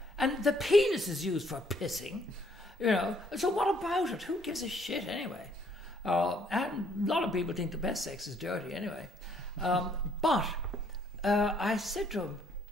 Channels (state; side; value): normal; both; correlation 0.66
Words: And the penis is used for pissing, you know. So what about it? Who gives a shit anyway? And a lot of people think the best sex is dirty anyway. But I said to him,